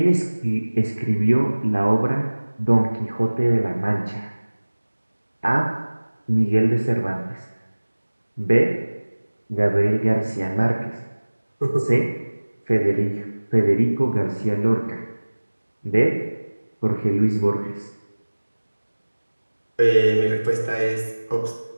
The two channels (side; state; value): both; inverted; correlation -1.00